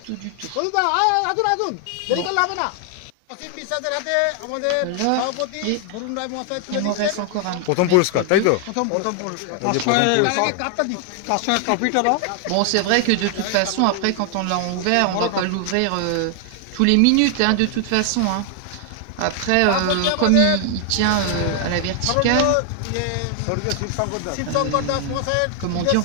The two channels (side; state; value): both; different; correlation 0.00